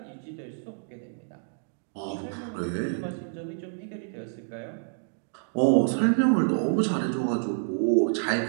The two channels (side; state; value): left; silent; digital silence